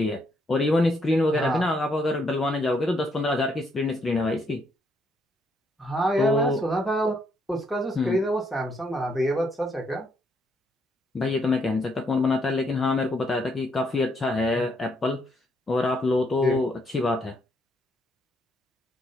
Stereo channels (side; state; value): both; normal; correlation 0.73